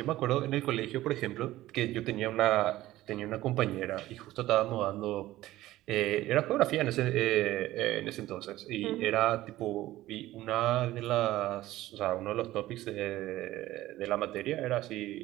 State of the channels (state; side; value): quieter; left; 15.9 dB